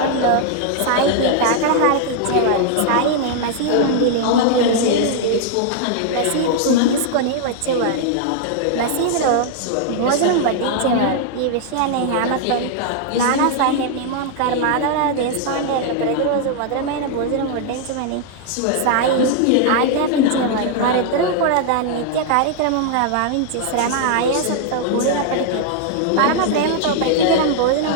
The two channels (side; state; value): both; different; correlation 0.00